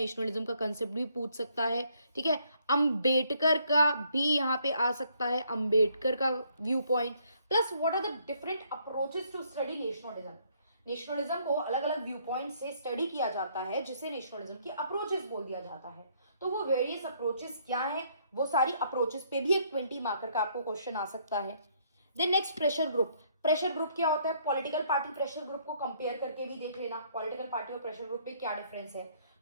का कंसेप्ट भी पूछ सकता है, ठीक है। अंबेडकर का भी यहाँ पे आ सकता है, अंबेडकर का view point, plus what are the different approaches to study nationalism. Nationalism को अलग अलग व्यू पॉइंट से स्टडी किया जाता है, जिसे नेशनलिज्म की अप्रोचेस बोल दिया जाता है। तो वो वेरियस अप्रोचेस क्या है, वो सारी अप्रोचेस पे भी एक 20 मार्कर का आपको क्वेश्चन आ सकता है। Then next pressure group. Pressure group क्या होता है, पॉलिटिकल पार्टी प्रेशर ग्रुप को कंपेयर करके भी देख लेना, पॉलिटिकल पार्टी और प्रेशर ग्रुप में क्या डिफरेंस है,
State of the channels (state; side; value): inverted; both; correlation -0.67